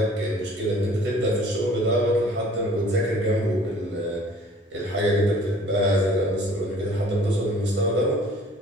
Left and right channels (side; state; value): both; normal; correlation 0.52